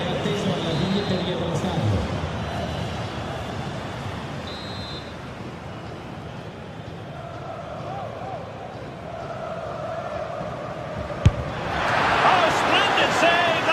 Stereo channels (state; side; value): identical; both; correlation 1.00